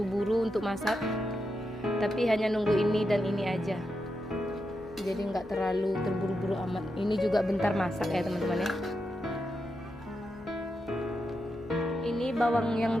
untuk masak. Tapi hanya nunggu ini dan ini aja. Jadi nggak terlalu terburu-buru amat. Ini juga bentar masak ya teman-teman ya. Ini bawang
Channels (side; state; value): left; noise; hum, 23 dB below the sound